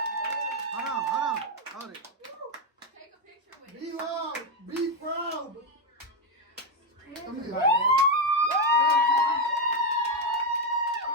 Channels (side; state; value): both; normal; correlation 0.07